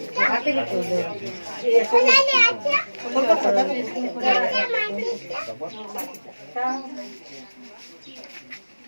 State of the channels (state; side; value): inverted; both; correlation -1.00